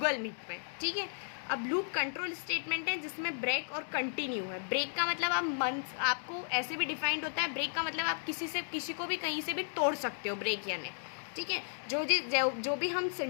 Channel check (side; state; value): right; silent; digital silence